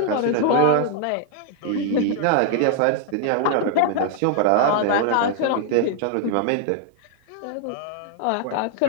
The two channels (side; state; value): both; different; correlation 0.00